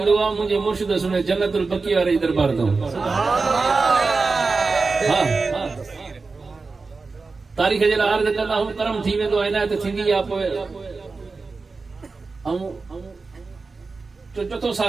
आहे मुंहिंजे मुर्शिद सुने जन्नतुल बकी वारे दरबार तो हाँ तारीख़ जे लाइ अर्ज़ कंदा हूं करम थी वेंदो आहे इनायत थींदी आहे पोइ चौथो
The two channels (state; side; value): quieter; left; 4.1 dB